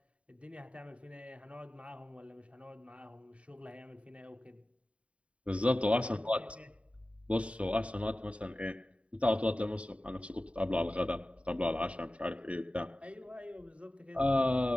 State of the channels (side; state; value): left; late; 0.063 ms